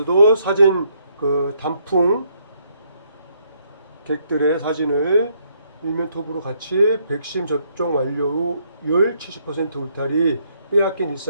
사진 단풍 객들의 사진을 일면 톱으로 같이 백신 접종 완료율 70% 울타리 빼앗긴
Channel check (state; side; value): inverted; both; correlation -0.71